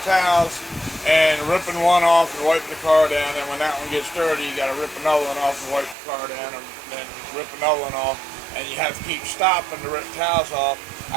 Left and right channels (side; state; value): left; drops out; at 6.0 s